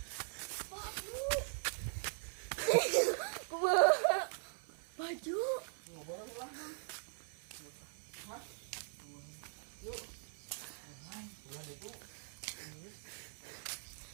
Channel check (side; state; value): left; silent; 50 dB below the other